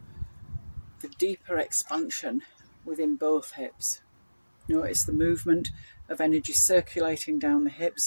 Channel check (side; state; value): both; inverted; correlation -1.00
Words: the deeper expansion within both hips. Notice the movement of energy circulating down the